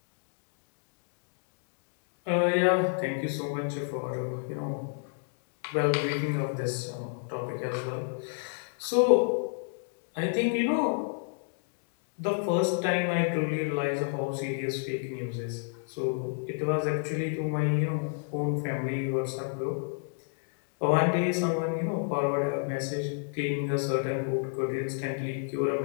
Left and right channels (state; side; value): silent; right; digital silence